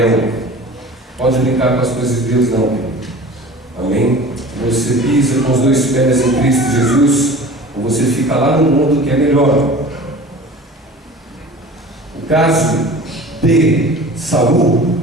Pode brincar com as coisas de Deus não, querido. Amém? Você pisa com os dois pés em Cristo Jesus, ou você fica lá no mundo que é melhor. O caso de Saul,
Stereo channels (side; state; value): both; normal; correlation 0.41